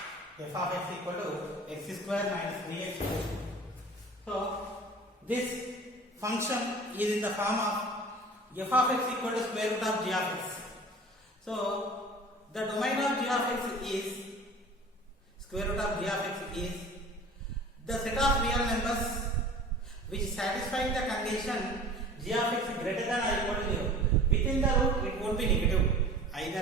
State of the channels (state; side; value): normal; both; correlation 0.42